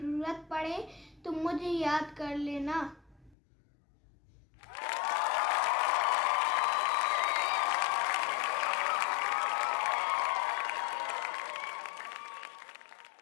पड़े तो मुझे याद कर लेना।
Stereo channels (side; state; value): right; drops out; at 3.4 s